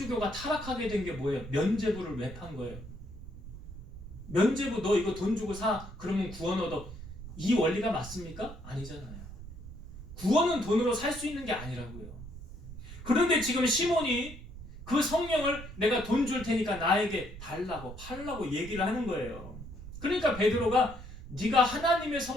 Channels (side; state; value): right; noise; rumble, 13 dB below the sound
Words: 타락하게 된 게 뭐예요? 면죄부를 왜 판 거예요? 면죄부 너 이거 돈 주고 사 그러면 구원 얻어. 이 원리가 맞습니까? 아니잖아요. 구원은 돈으로 살 수 있는 게 아니라고요. 그런데 지금 시몬이 그 성령을 내가 돈 줄 테니까 나에게 달라고 팔라고 얘기를 하는 거예요. 그러니까 베드로가 네가 하나님의